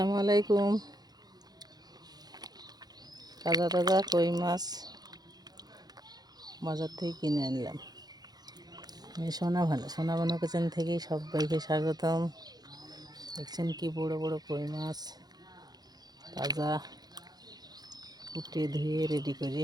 আলাইকুম। তাজা তাজা কই মাছ বাজার থেকে কিনে আনলাম। আমি সোনা ভানু কিচেন থেকে সবাইকে স্বাগতম। দেখছেন কি বড় বড় কই মাছ, তাজা কুটে ধুয়ে রেডি করে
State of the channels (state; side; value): late; left; 0.19 ms